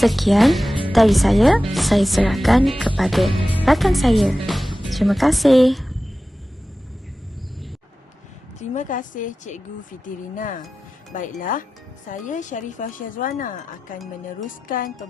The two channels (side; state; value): both; normal; correlation 0.95